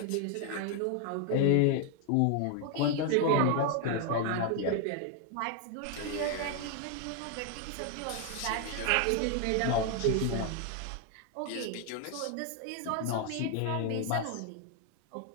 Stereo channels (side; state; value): both; different; correlation 0.01